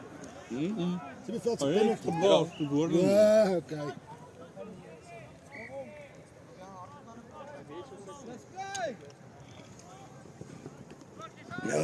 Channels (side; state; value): both; identical; correlation 1.00